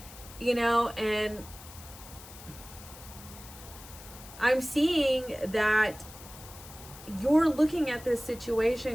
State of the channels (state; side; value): noise; left; hiss, 17 dB below the sound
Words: you know, and I'm seeing that you're looking at this